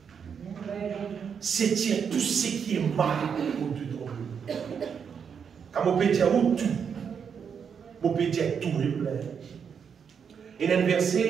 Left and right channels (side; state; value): left; quieter; 6.9 dB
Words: C'est tirer tout ce qui est mal au-dessus de nous. Quand on peut dire tout, on peut dire tout est plein. Il y a un